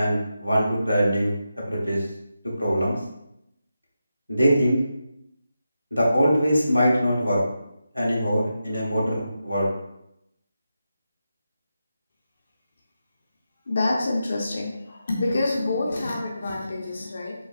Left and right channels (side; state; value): both; inverted; correlation -0.89